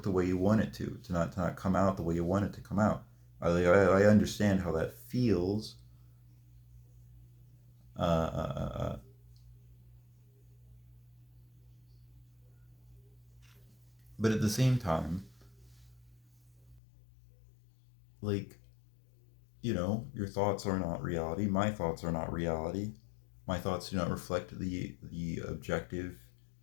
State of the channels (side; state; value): right; drops out; at 16.8 s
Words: the way you want it to not come out the way you want it to come out. I understand how that feels, uh, uh, uh, but at the same time, like, your thoughts are not reality. My thoughts are not reality. My thoughts do not reflect the objective